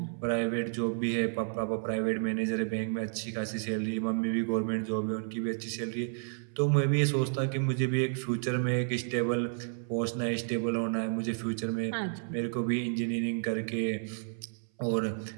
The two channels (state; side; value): silent; left; 57 dB below the other